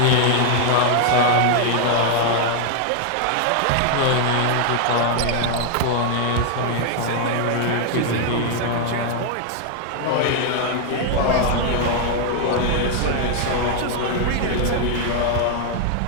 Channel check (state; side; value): different; both; correlation 0.00